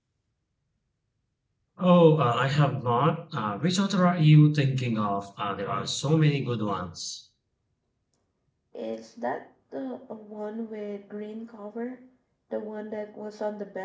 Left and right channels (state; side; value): identical; both; correlation 1.00